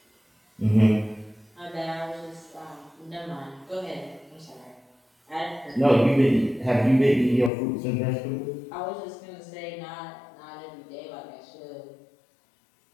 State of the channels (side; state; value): right; drops out; at 7.5 s